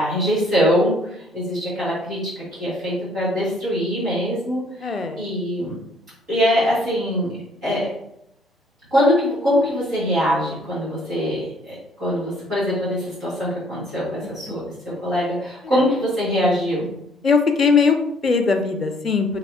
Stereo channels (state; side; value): normal; both; correlation 0.61